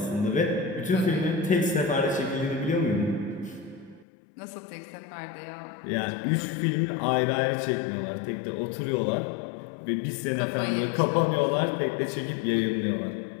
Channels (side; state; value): right; drops out; at 4.0 s